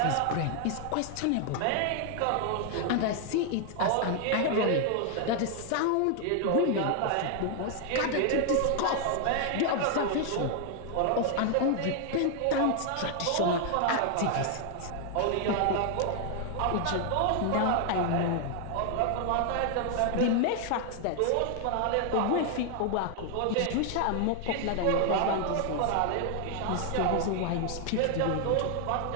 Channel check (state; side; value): different; both; correlation 0.00